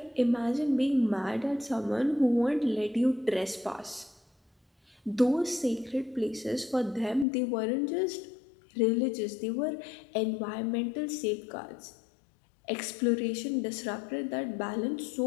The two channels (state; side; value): drops out; right; at 7.2 s